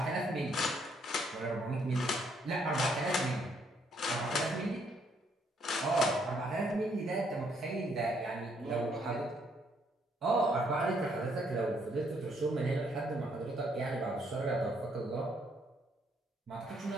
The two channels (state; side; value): normal; both; correlation 0.70